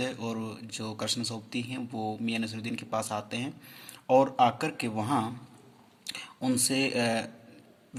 और जो कृष्ण सोबती हैं वो मियां नसरुद्दीन के पास आते हैं और आकर के वहाँ उनसे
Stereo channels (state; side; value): identical; both; correlation 1.00